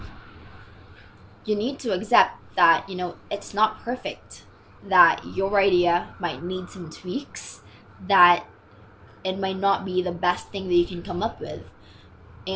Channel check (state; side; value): identical; both; correlation 1.00